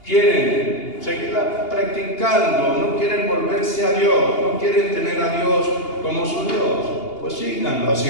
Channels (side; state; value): right; late; 2.8 ms